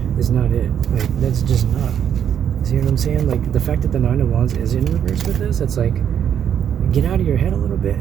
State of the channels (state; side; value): quieter; left; 8.9 dB